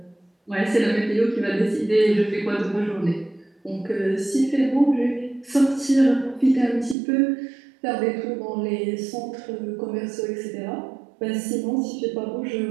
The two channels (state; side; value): drops out; left; at 7.0 s